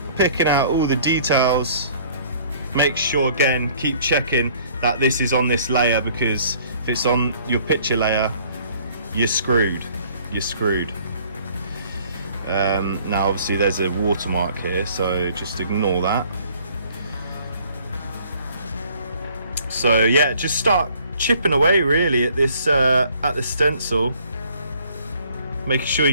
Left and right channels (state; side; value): inverted; both; correlation -0.57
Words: picking out all the details. Make sure, again, keep checking that this is on this layer, because if it's on your picture layer, you're screwed. Now obviously there's a watermark here, so just ignore that. So yeah, just start chipping away really at this at the stencil, making sure